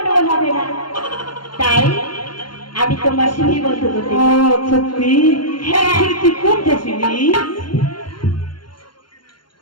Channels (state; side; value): late; right; 0.72 ms